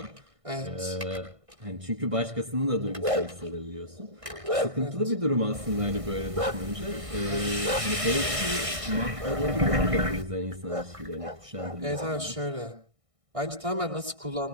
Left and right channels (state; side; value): late; left; 1.6 ms